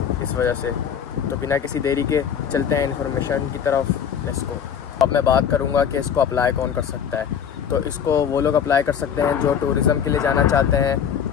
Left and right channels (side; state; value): right; quieter; 8.0 dB